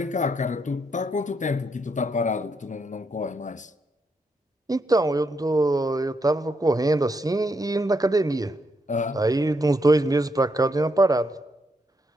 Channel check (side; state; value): both; normal; correlation 0.78